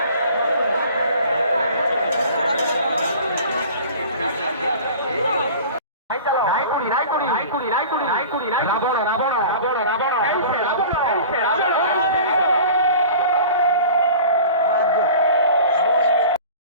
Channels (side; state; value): both; inverted; correlation -0.41